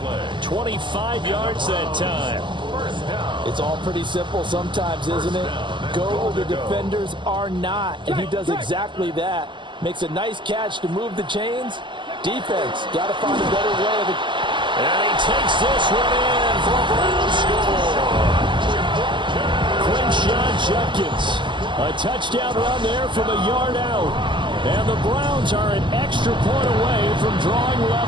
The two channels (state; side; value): late; left; 0.23 ms